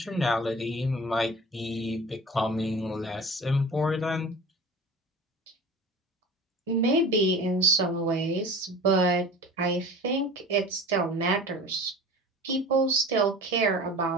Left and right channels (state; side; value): normal; both; correlation 0.38